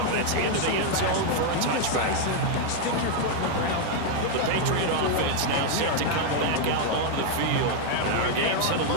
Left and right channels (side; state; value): both; different; correlation 0.00